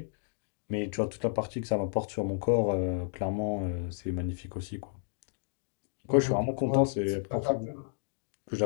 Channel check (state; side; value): silent; right; digital silence